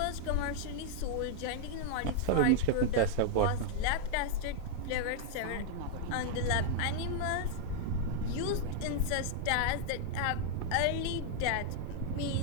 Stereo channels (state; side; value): different; both; correlation -0.01